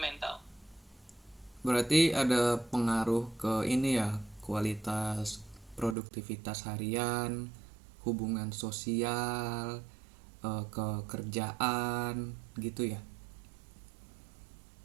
Berarti ada pengaruh ke ini ya, kualitas produktivitas harian, hubungan sosial, ke kerjaan gitu ya.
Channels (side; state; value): left; drops out; at 6.0 s